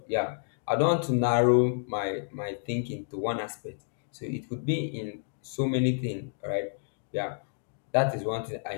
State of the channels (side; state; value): right; silent; digital silence